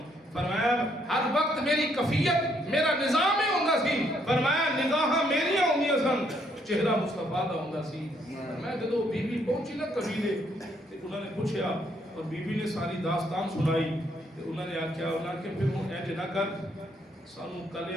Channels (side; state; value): both; normal; correlation 0.71